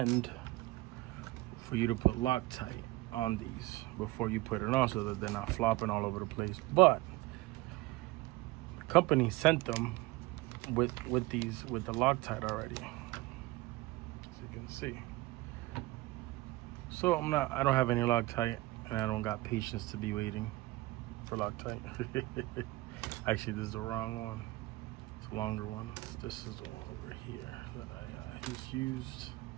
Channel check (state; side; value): quieter; left; 19.7 dB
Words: for you to put Loctite on these before you put it on, so that they're not flopping all over the place. But the company sent them with the Loctite already, as you can see. So I don't have any Loctite, and I don't got patience to be waiting for Loctite. Actually, this is the wrong one. It's a longer one. This is the one over here that I just used